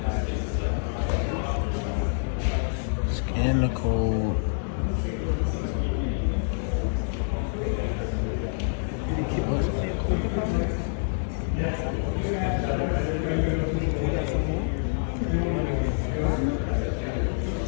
Scan the code.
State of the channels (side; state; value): right; silent; 60 dB below the other